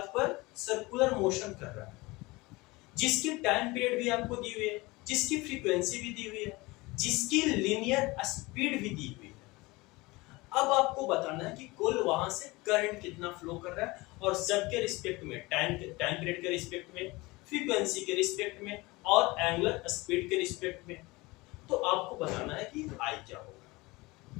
पर सर्कुलर मोशन कर रहा है, जिसकी टाइम पीरियड भी आपको दी हुई है, जिसकी फ्रीक्वेंसी भी दी हुई है, जिसकी लीनियर स्पीड भी दी हुई है। अब आपको बताना है कि कुल वहां से करंट कितना फ्लो कर रहा है और सबके रिस्पेक्ट में, टाइम पीरियड के रिस्पेक्ट में, फ्रीक्वेंसी के रिस्पेक्ट में और एंगुलर स्पीड के रिस्पेक्ट में। तो आपको बताना है कि आई क्या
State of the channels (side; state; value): right; quieter; 22.6 dB